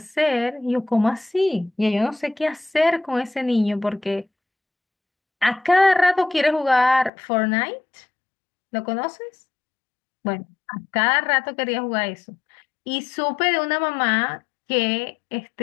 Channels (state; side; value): drops out; right; at 7.1 s